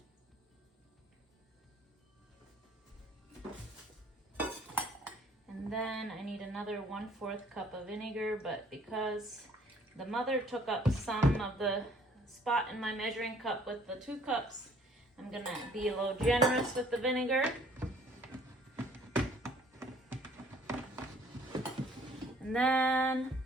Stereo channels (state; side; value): normal; both; correlation 0.58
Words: And then I need another 1/4 cup of vinegar, but because the mother took up some of the spot in my measuring cup with the 2 cups, I'm going to be a little generous with the vinegar. And then